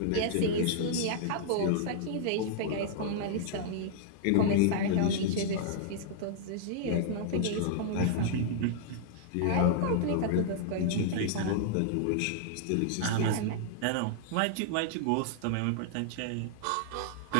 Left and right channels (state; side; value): different; both; correlation -0.01